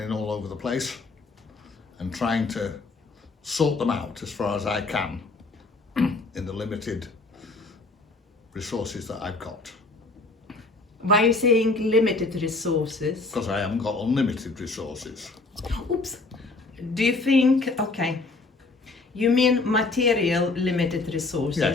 all over the place, and trying to sort them out as far as I can in the limited resources that I've got. Why are you saying limited resources? Because I haven't got unlimited resources. Oops. Do you think, okay, you mean material limited resources?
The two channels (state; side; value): quieter; right; 3.5 dB